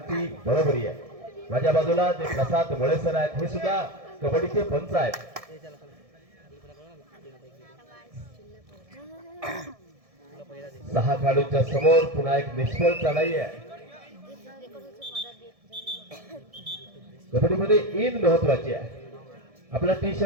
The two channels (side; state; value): left; late; 1.6 ms